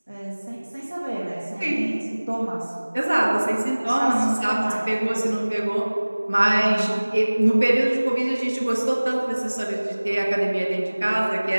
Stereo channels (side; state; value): both; inverted; correlation -1.00